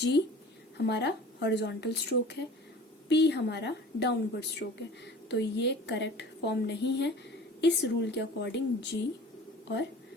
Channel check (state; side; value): normal; both; correlation 0.42